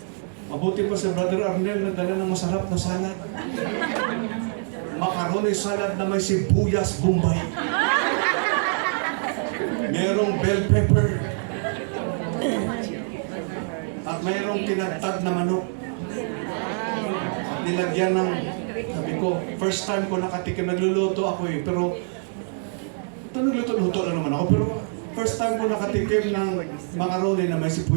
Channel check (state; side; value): silent; left; 62 dB below the other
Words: Mabuti pa si Brother Arnel na dala ng masarap na salad. Macaroni salad na may sibuyas Bombay. Merong bell pepper. At mayroong tinagtad na manok. At nilagyan ng, sabi ko, first time ko nakatikim, nagluluto ako eh, pero ito nagluto-luto lang naman ako, pero first time ko nakatikim ng macaroni na may